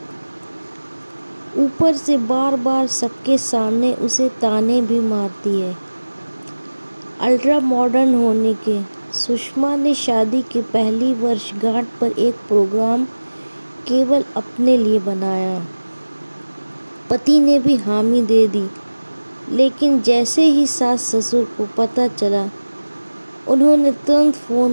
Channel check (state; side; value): inverted; both; correlation -1.00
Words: اوپر سے بار بار سب کے سامنے اسے طعنے بھی مارتی ہے۔ الٹرا ماڈرن ہونے کے سشما نے شادی کی پہلی برس گانٹ پر ایک پروگرام کیول اپنے لیے بنایا۔ پتی نے بھی حامی دے دی، لیکن جیسے ہی ساس سسر کو پتہ چلا، انہوں نے ترنت